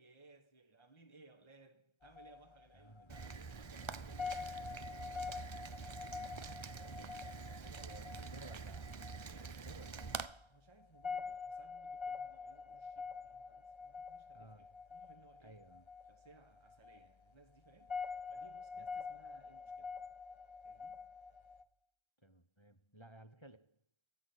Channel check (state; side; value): late; right; 1.3 ms